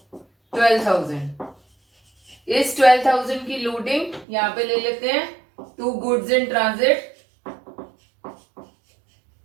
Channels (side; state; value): left; drops out; at 4.2 s